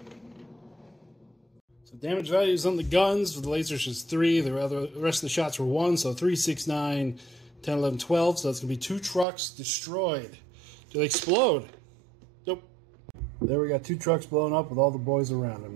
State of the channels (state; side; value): drops out; left; at 9.2 s